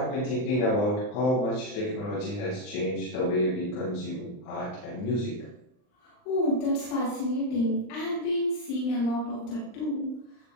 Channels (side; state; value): right; late; 39 ms